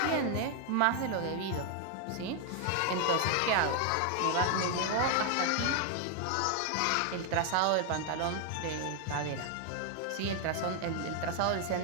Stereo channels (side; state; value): both; different; correlation 0.00